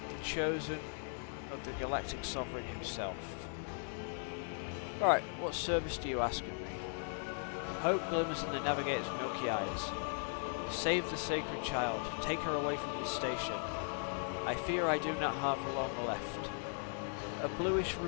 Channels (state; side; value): silent; right; 52 dB below the other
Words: The chosen of the galactic sovereign himself. Alright, what service do you ask of me? Hope glimmers in the navigator's milky eyes. Save the sacred child. Take her away from this station. I fear I do not have long left. A bluish